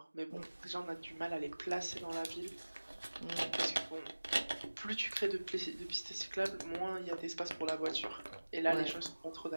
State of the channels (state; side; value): inverted; both; correlation -1.00